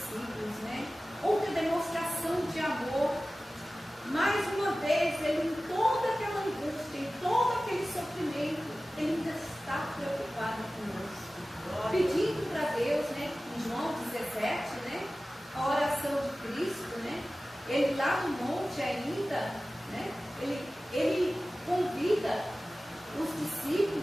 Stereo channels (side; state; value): both; normal; correlation 0.96